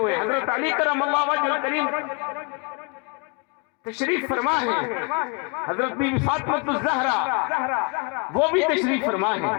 حضرت علی کرم اللہ وجہ کریم تشریف فرما ہے، حضرت بی بی فاطمہ الزہرا وہ بھی تشریف فرما ہے.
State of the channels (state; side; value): quieter; right; 33.5 dB